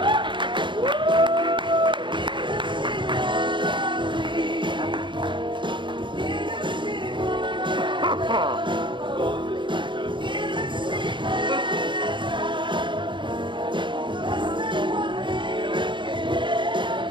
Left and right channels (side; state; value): left; late; 0.23 ms